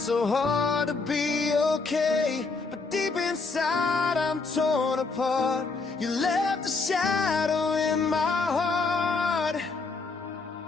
hard to be okay, but deep inside I'm torn apart. You left a shadow in my heart.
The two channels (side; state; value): right; quieter; 4.1 dB